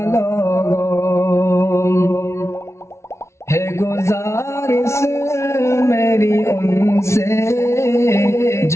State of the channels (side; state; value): right; late; 0.13 ms